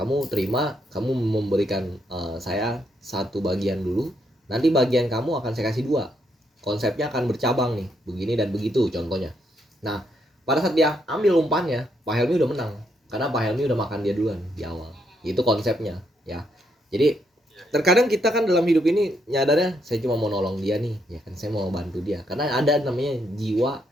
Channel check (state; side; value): normal; both; correlation 0.76